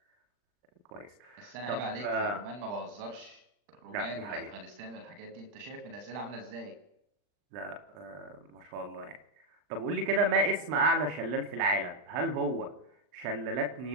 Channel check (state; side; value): late; left; 39 ms